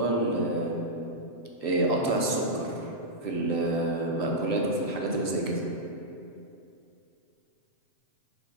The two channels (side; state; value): right; late; 7.7 ms